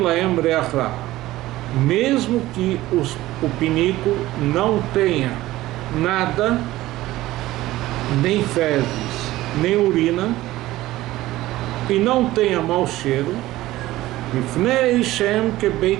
laem reach ra. Mesmo que o pinico não tenha nada, nem fezes, nem urina, e não tenha mau cheiro, Mifnei Shem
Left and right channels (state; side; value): quieter; left; 16.6 dB